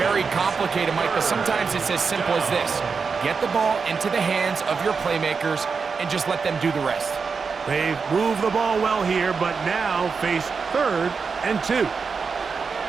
complicated, Mike, but sometimes it's as simple as this. Get the ball into the hands of your playmakers and just let them do the rest. They've moved the ball well here, but now face 3rd and 2.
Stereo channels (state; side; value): quieter; left; 5.3 dB